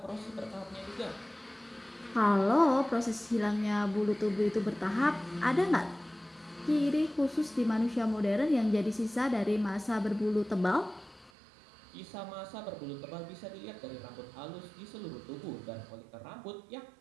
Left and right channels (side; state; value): left; drops out; at 11.3 s